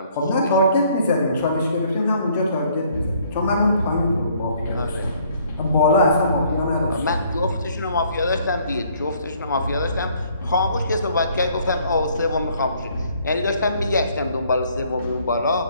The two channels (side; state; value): both; inverted; correlation -0.62